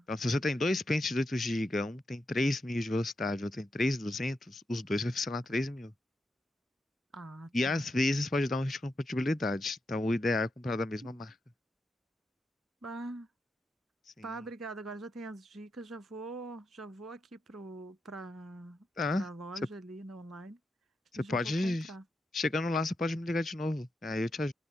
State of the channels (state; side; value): normal; both; correlation 0.86